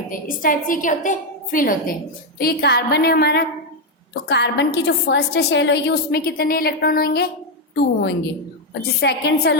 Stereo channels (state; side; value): normal; both; correlation 0.04